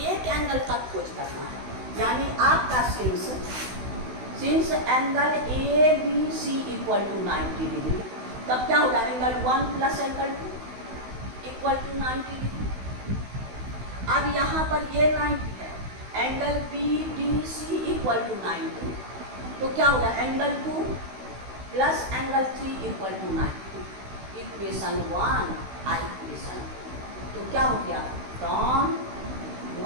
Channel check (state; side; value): late; left; 16 ms